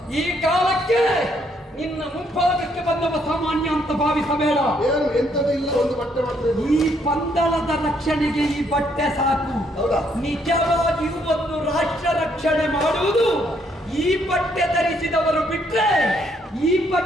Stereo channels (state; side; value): normal; both; correlation 0.71